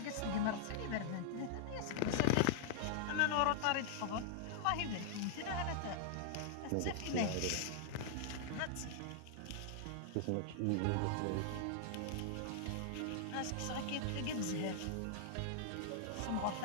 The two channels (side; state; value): both; different; correlation 0.00